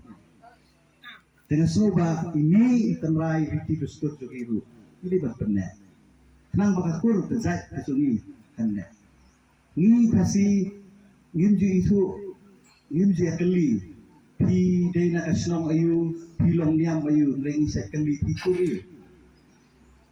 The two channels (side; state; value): both; identical; correlation 1.00